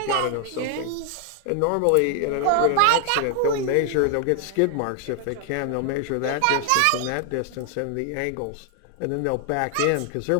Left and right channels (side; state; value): both; different; correlation 0.00